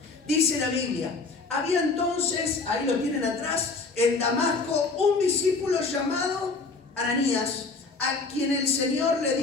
Dice la Biblia, había entonces, ahí lo tienen atrás, en Damasco, un discípulo llamado Ananías, a quien el Señor le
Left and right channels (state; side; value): quieter; right; 4.0 dB